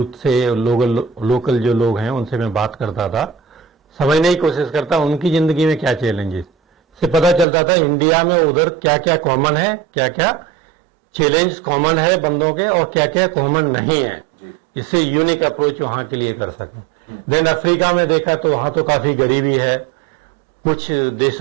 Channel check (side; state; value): left; drops out; at 7.5 s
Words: से, लोकल जो लोग हैं उनसे मैं बात करता था, समझने की कोशिश करता उनकी जिंदगी में क्या चैलेंजेस, से पता चलता था इंडिया में उधर क्या क्या कॉमन है, क्या क्या चैलेंज कॉमन है बंदों के, और क्या क्या कॉमन नहीं है. इससे यूनिक अप्रोच वहां के लिए कर सकें. देन अफ्रीका में देखा तो वहां तो काफी गरीबी है, कुछ